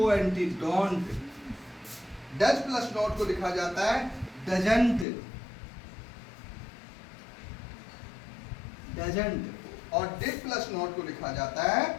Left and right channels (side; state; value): right; drops out; at 5.1 s